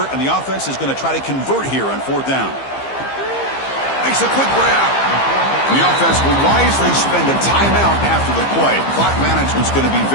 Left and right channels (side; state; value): right; late; 15 ms